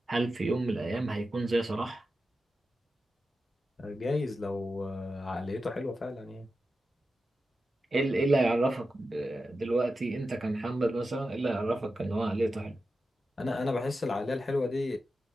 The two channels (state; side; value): normal; both; correlation 0.91